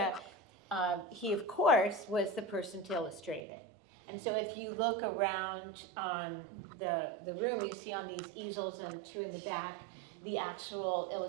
he, of course, was the person to illustrate it. And so if you look around on the room, you see on these easels and two in the back, the actual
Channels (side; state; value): left; drops out; at 3.4 s